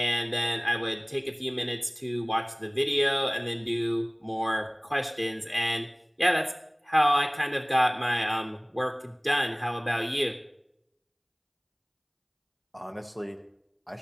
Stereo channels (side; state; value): both; identical; correlation 1.00